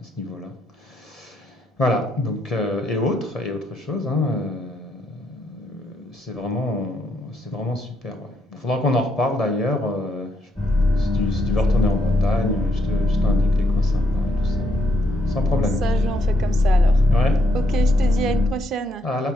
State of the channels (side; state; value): both; normal; correlation 0.76